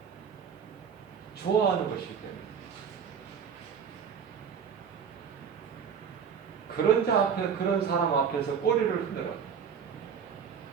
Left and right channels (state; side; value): quieter; left; 7.1 dB